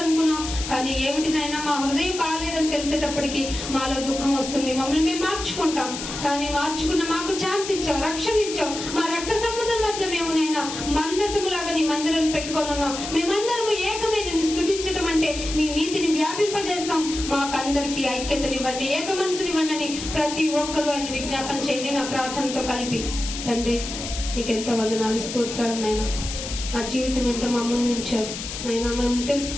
అనుకున్నాం, కానీ ఏమిటినైనా మా హృదయం బాగాలేదని తెలిసేటప్పటికి మాలో దుఃఖం వస్తుంది. మమ్మల్ని మేము మార్చుకుంటాం, కానీ మార్చుకున్న మాకు ఛాన్స్ ఇచ్చావు, రక్షణ ఇచ్చావు. మా రక్త సంబంధం మధ్య మేము నైనా మందసములాగా నీ మందిరం పెట్టుకొని ఉన్నాం. మేమందరము ఏకమే నిన్ను స్తుతించటం అంటే నీ నీతిని వ్యాపింపజేస్తాం. మాకందరికీ ఐక్యతనివ్వండి, ఏక మనసునివ్వండి అని ప్రతి ఒక్కరూ ఆయన విజ్ఞాపన చేయండి. నా ప్రార్థనతో కలిపి తండ్రి నీకెంతో వందనాలు, స్తోత్రాలు నాయన. మా జీవితం ఏంటో మా ముందు ఉంచారు నాయన. మేము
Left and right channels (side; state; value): left; noise; hiss, 7 dB below the sound